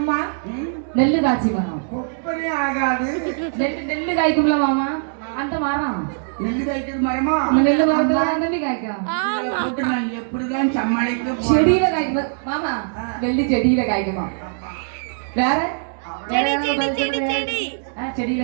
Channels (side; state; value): left; silent; digital silence